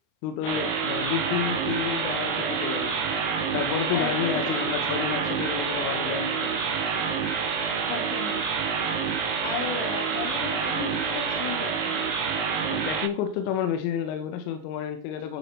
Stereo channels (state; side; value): late; right; 39 ms